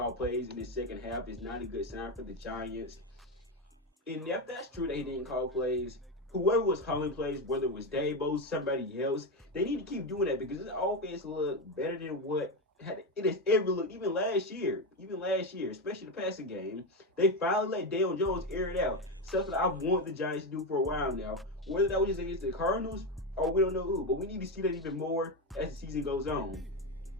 plays in the second half is not a good sign for the Giants. And if that's true that he didn't call plays, whoever was calling plays, whether it was Daboll, somebody else, they need to keep doing that because this offense look better than what it has ever looked, even last year, especially the passing game. They finally let Daniel Jones air it out, stuff that I want the Giants to do for a while now. Whether that was just against the Cardinals or we don't know who, but we need to see that even more as the season goes on.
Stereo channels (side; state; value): both; normal; correlation 0.12